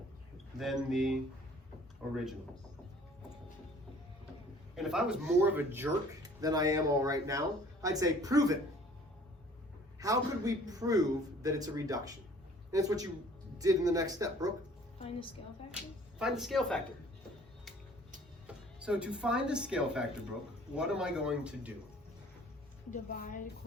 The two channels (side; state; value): both; normal; correlation 0.53